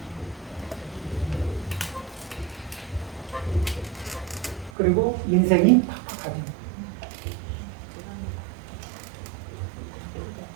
그리고 인생이 팍팍하죠.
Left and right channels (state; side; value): drops out; left; at 4.7 s